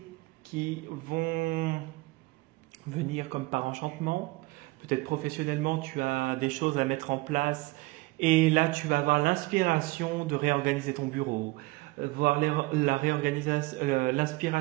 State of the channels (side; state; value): left; quieter; 22.3 dB